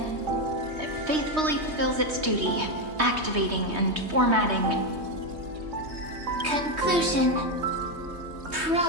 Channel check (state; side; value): late; left; 3.2 ms